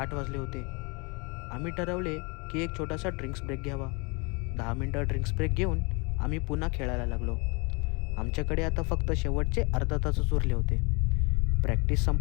वाजले होते. आम्ही ठरवले की एक छोटासा ड्रिंक्स ब्रेक घ्यावा. 10 मिनटं ड्रिंक्स ब्रेक घेऊन आम्ही पुन्हा खेळायला लागलो. आमच्याकडे आता फक्त शेवटचे अर्धा तासच उरले होते. प्रॅक्टिस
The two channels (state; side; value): quieter; right; 30.4 dB